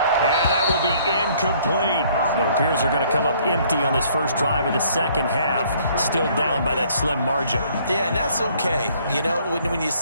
And that will be incomplete. It appears they're going to come up empty on this first drive of the second half. Still down by that slim margin. Yeah, and that's okay. You know, when you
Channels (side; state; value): both; inverted; correlation -0.61